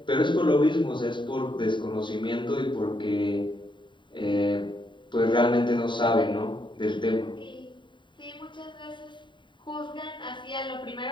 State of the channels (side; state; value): right; late; 0.23 ms